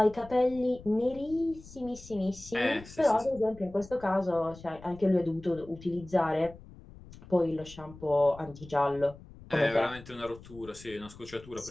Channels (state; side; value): noise; left; rumble, 19 dB below the sound